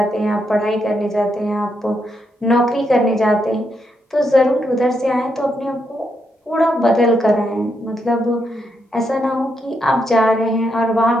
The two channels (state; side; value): normal; both; correlation 0.80